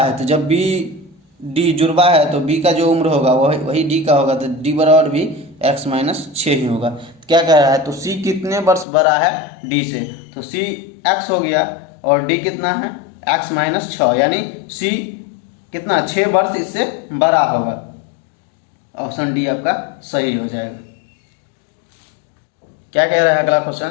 तो जब बी डी जुड़वा है तो बी का जो उम्र होगा वही डी का होगा, तो डी बराबर भी x -6 ही होगा। तो क्या कह रहा है तो सी कितने वर्ष बड़ा है डी से, तो सी x हो गया और डी कितना है x -6 यानी सी कितना 6 वर्ष इससे बड़ा होगा। ऑप्शन डी आपका सही हो जाएगा। क्या कह रहा है अगला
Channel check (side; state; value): right; drops out; at 8.8 s